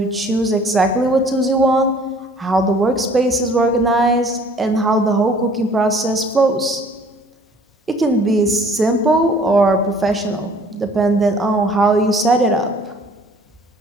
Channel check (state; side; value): normal; both; correlation 0.54